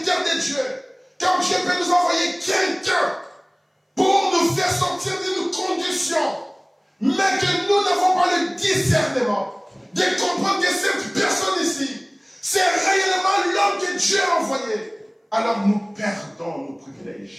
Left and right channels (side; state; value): both; identical; correlation 1.00